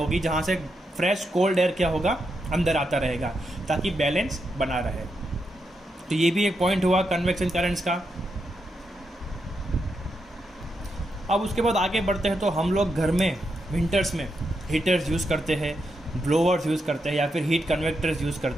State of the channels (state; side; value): normal; both; correlation 0.83